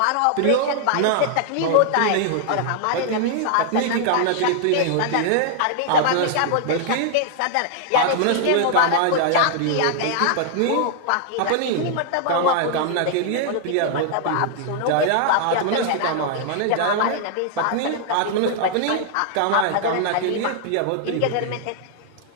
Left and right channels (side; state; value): both; different; correlation -0.01